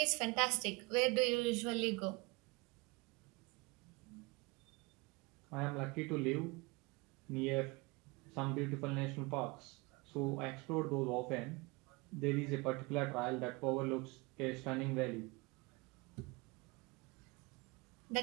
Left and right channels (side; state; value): left; quieter; 26.2 dB